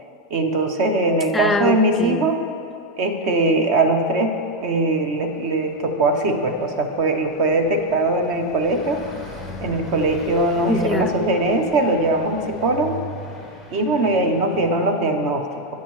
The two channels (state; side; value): normal; both; correlation 0.03